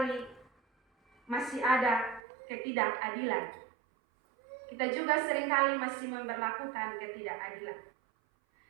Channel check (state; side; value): drops out; left; at 2.2 s